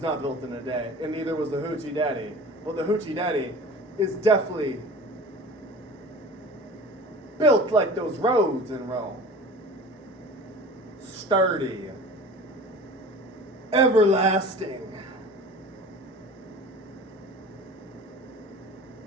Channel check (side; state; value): both; normal; correlation 0.40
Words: not built in a day, and neither was the Hoochie Daddy. But the Hoochie Daddy is definitely built like those roads in Rome. Sturdy. Everlasting.